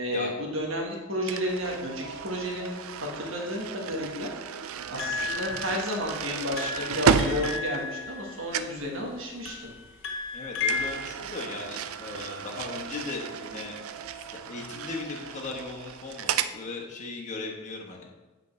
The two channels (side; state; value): both; normal; correlation 0.04